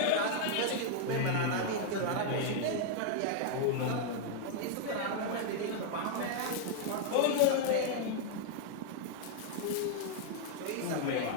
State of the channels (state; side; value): different; both; correlation 0.00